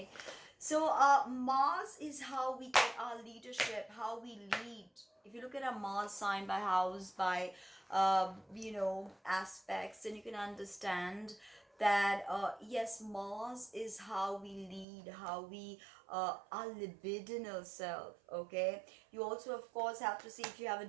so Mars is how we get our leadership, how we lead. If you look at a Mars sign by house, by aspects, then you can understand that yes, Mars is how we lead, how we our libidinal self. Okay, you also of course have to see if you have a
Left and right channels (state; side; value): drops out; left; at 14.9 s